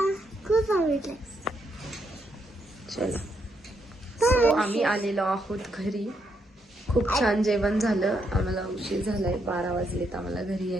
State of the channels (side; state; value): both; normal; correlation 0.78